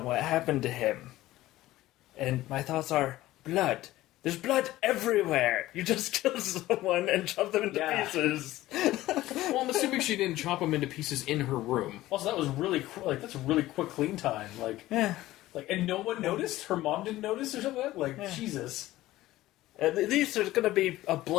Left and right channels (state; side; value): quieter; right; 16.2 dB